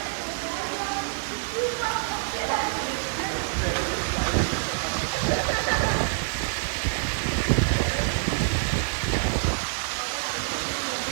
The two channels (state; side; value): silent; left; 61 dB below the other